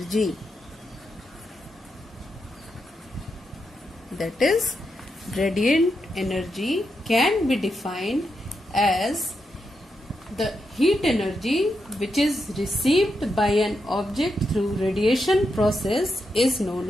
That is, radiant energy can be defined as the heat energy which is received by an object through radiation process is known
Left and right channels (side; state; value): both; normal; correlation 0.85